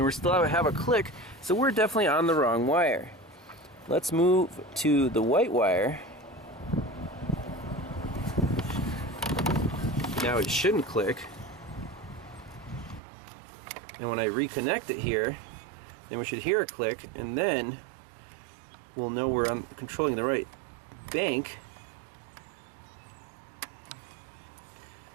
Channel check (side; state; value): left; drops out; at 13.0 s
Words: we still have a click, so we're definitely on the wrong wire. Let's move to the white wire. Now it shouldn't click. And when I reconnect it here, then we should hear a click, and then we'll know we're controlling the right bank.